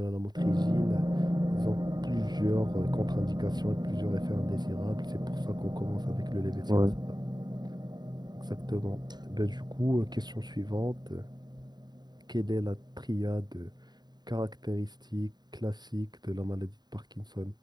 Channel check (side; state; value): left; late; 0.20 ms